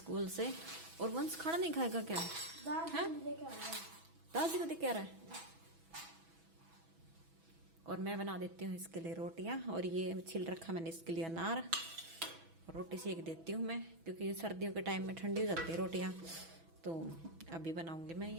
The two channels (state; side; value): late; left; 6.1 ms